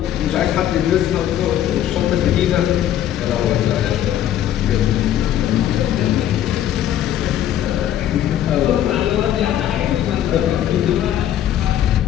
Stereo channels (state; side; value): quieter; right; 11.4 dB